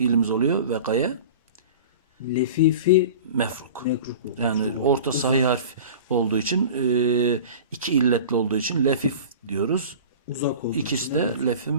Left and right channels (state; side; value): inverted; both; correlation -0.37